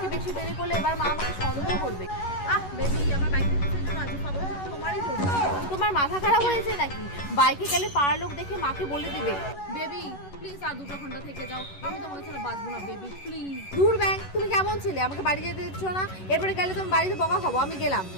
বেশি দেরি করলে এবার মা আমাকে সন্দেহ করবে। বেবি আমার বাইকে তোমারই তো। তোমার মাথা খারাপ হয়েছে নাকি? বাইকে গেলে পাড়ার লোক দেখে মাকে বলে দিবে। বেবি প্লিজ আর 2 ঘন্টা থেকে যাও, আমি তোমাকে ছাড়া বাঁচবো না বেবি প্লিজ। দূর ব্যাং, তুমি কেমন ছিলে? আমাকে বাড়ি যেতে দিচ্ছ না, এরপরে গেলে তুমি বাড়িতে বকা খাবো। আমি গেলাম।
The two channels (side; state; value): right; late; 11 ms